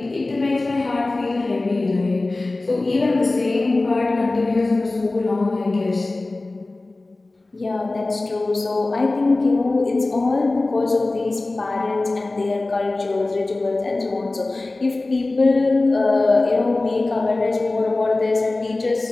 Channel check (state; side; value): quieter; right; 3.1 dB